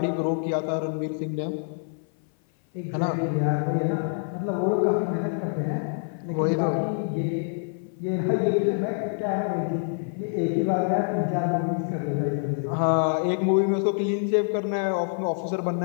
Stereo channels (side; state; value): right; silent; 56 dB below the other